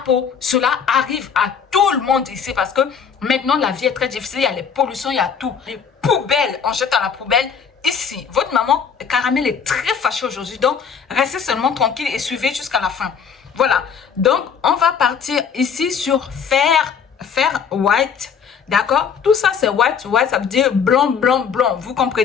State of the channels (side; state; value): right; quieter; 6.8 dB